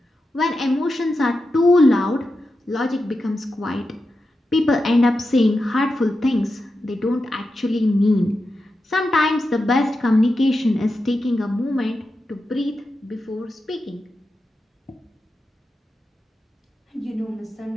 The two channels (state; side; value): normal; both; correlation 0.90